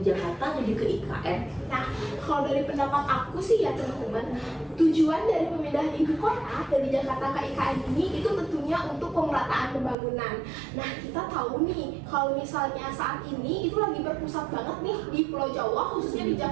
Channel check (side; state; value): left; drops out; at 10.0 s